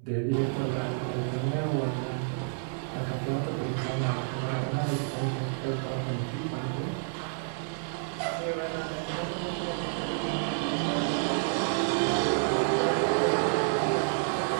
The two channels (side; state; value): left; silent; digital silence